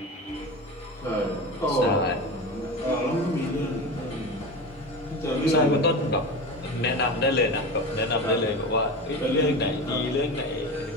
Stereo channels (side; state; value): both; normal; correlation 0.26